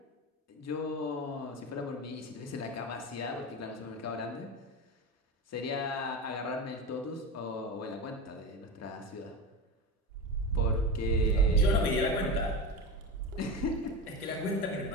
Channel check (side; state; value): both; normal; correlation 0.22